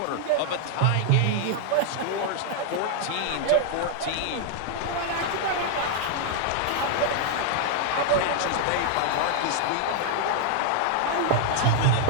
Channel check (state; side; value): different; both; correlation 0.00